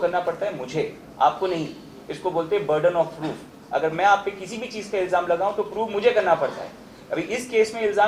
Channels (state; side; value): identical; both; correlation 1.00